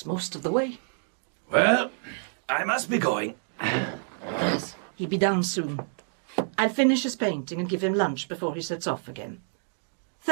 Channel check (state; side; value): silent; left; 60 dB below the other